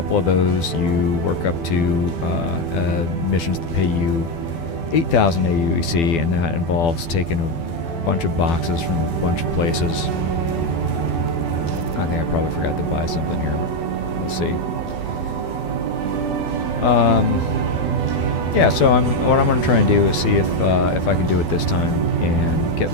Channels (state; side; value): late; right; 12 ms